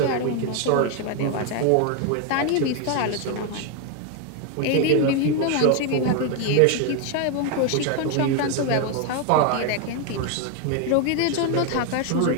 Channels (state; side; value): different; both; correlation 0.01